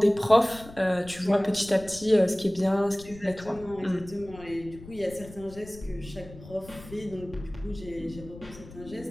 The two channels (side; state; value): left; noise; rumble, 17 dB below the sound